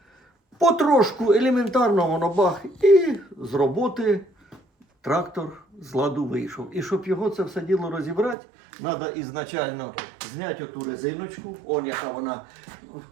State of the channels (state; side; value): drops out; left; at 8.3 s